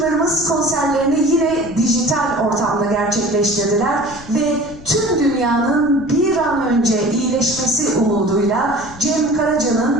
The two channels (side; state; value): left; noise; rumble, 18 dB below the sound